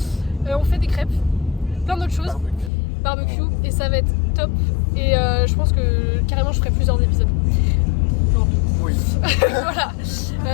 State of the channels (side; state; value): right; drops out; at 2.7 s